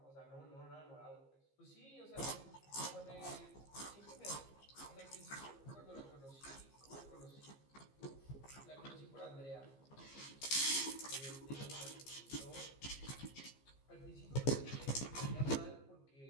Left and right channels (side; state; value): right; late; 15 ms